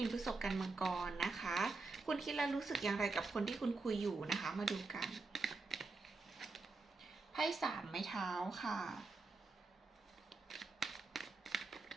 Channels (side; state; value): left; quieter; 3.8 dB